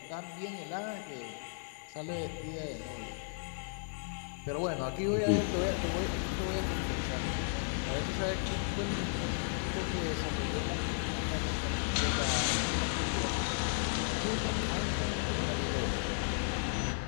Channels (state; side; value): silent; right; 55 dB below the other